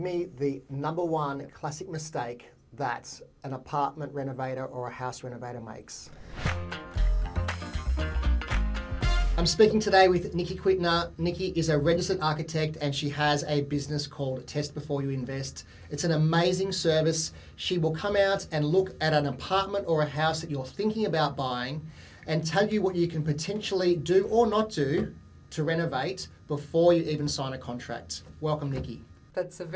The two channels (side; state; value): both; identical; correlation 1.00